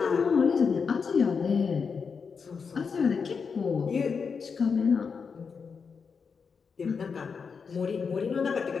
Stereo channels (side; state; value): right; quieter; 5.6 dB